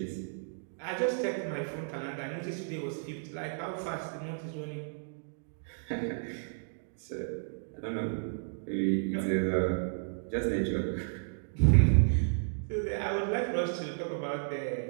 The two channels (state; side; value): silent; left; digital silence